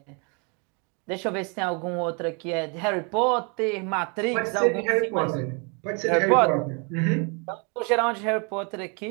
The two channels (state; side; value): quieter; left; 34.3 dB